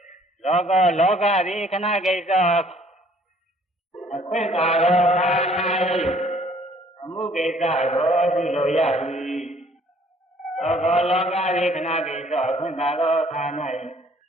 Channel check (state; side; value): normal; both; correlation 0.59